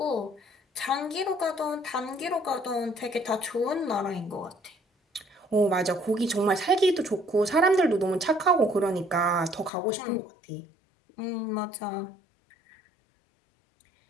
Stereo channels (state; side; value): drops out; right; at 9.7 s